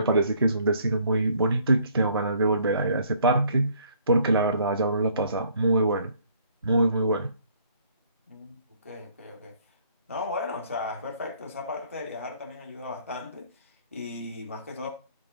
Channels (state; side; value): inverted; both; correlation -0.62